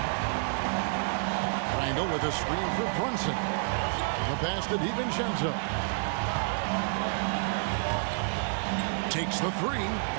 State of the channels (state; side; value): silent; left; 58 dB below the other